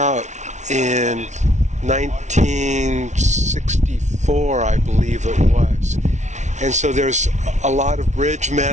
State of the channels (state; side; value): late; left; 0.34 ms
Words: in 1964, I believe it was. And so there's a lot of bridge